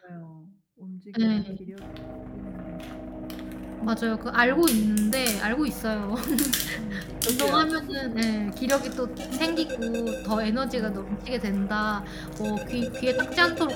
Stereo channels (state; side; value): identical; both; correlation 1.00